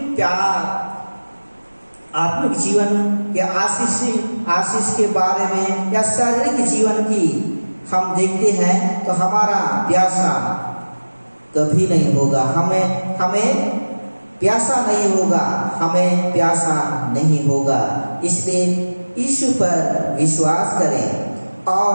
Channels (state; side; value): inverted; both; correlation -1.00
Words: प्यार, आत्मिक जीवन के आशीष के बारे में या शारीरिक जीवन की हम देखते हैं तो हमारा प्यासा कभी नहीं होगा, हमें प्यासा नहीं होगा, हमें प्यासा नहीं होगा। इसलिए यीशु पर विश्वास करें,